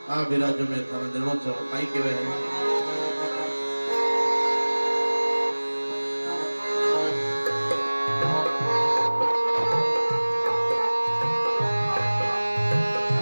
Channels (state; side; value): inverted; both; correlation -1.00